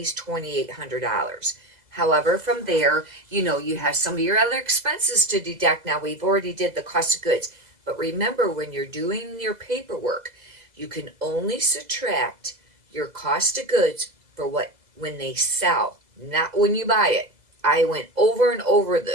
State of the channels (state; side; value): late; left; 2.0 ms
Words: $2,800. However, from there, you have some of your other expenses to deduct. Now, we've already did the cost of goods. But remember, when you're doing your paperwork, you can only subtract your cost of goods for when they sell, not when you buy it. I went over and over